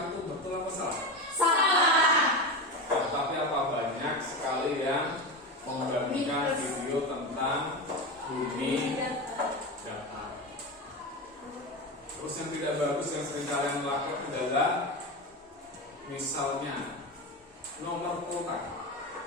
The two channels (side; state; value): both; normal; correlation 0.21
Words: itu betul apa salah? Salah. Tapi apa banyak sekali yang membagikan video tentang bumi datar. Terus yang tidak bagus yang sering kalian lakukan adalah misalnya nomor kontak.